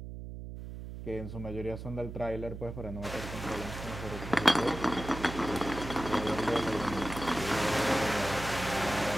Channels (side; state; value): right; noise; hum, 9 dB below the sound